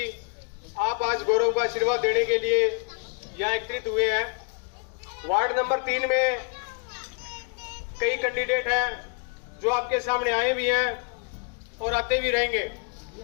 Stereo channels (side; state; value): right; quieter; 36.7 dB